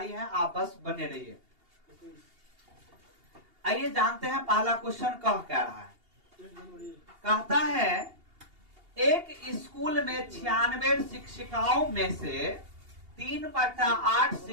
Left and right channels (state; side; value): late; left; 2.8 ms